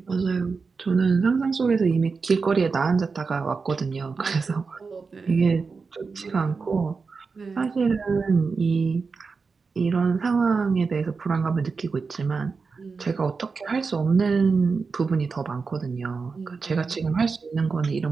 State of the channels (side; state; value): left; quieter; 4.7 dB